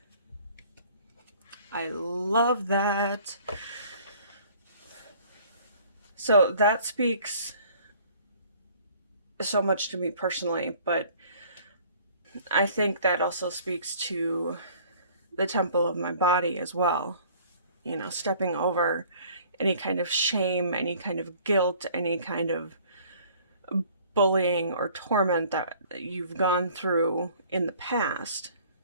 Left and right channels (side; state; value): both; inverted; correlation -0.54